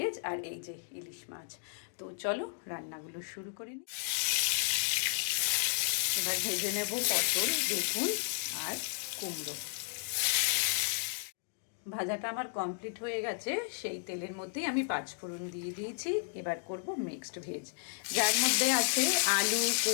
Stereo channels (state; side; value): silent; right; digital silence